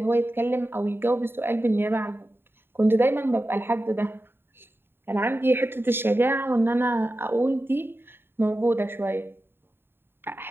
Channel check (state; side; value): late; left; 0.11 ms